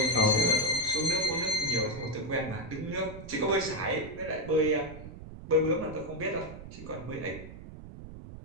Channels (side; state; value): right; noise; rumble, 13 dB below the sound